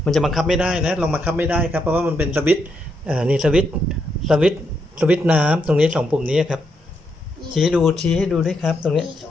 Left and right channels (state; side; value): normal; both; correlation 0.79